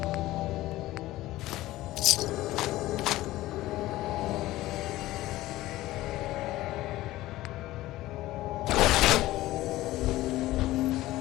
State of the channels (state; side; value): quieter; right; 16.7 dB